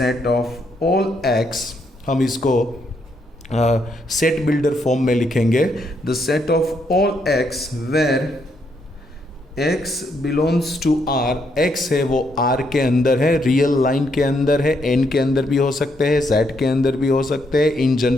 of all x, हम इसको सेट बिल्डर फॉर्म में लिखेंगे, the set of all x where x belongs to R, x है वो R के अंदर है, रियल लाइन के अंदर है, n के अंदर भी हो सकते हैं, z के अंदर भी हो सकते हैं, इन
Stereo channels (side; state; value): both; normal; correlation 0.76